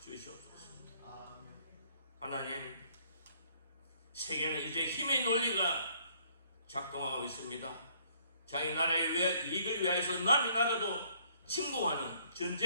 주시옵소서. 하나님, 세계는 이제 힘의 논리가 작동하고 있습니다. 자기 나라의 이익을 위해서 남의 나라도 침공하는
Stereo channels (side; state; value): both; inverted; correlation -0.64